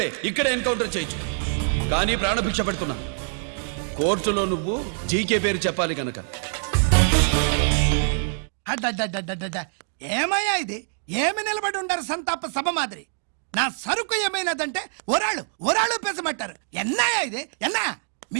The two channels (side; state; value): left; silent; digital silence